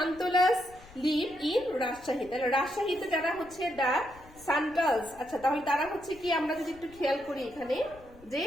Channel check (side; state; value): left; noise; rumble, 23 dB below the sound